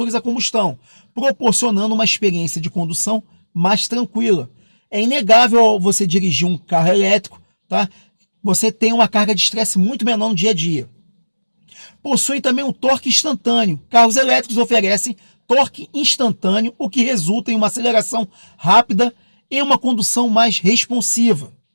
a combustão, proporcionando uma experiência de condução mais tranquila. É inegável você dirigir um carro elétrico, tá? Você tem uma carga de estresse muito menor no dia a dia. Possui também um torque instantâneo. Carros elétricos oferecem torque instantâneo, o que resulta em uma aceleração rápida e uma condução mais responsiva.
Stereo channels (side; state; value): both; inverted; correlation -1.00